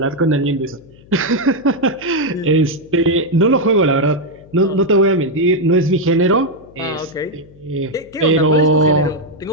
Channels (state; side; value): noise; left; hum, 25 dB below the sound